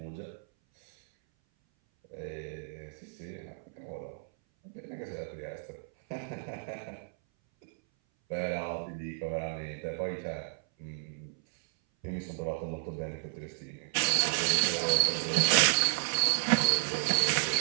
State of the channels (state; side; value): silent; left; 56 dB below the other